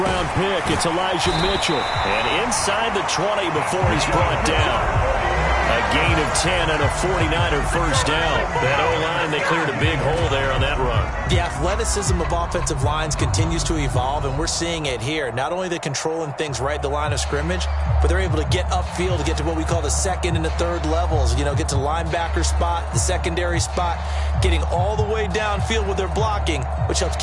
pick, it's Elijah Mitchell. And inside the 20 before he's brought down. A gain of 10 and a 49er first down. That O-line, they cleared a big hole there on that run. The athleticism of offensive lines continues to evolve, and we're seeing it here. Not only they're controlling things right at the line of scrimmage, but they're able to get upfield to get to what we call the 2nd and the 3rd levels. You know, get to the linebacker spot, the secondary spot, getting all the way downfield with their blocking, which helps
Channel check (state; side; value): identical; both; correlation 1.00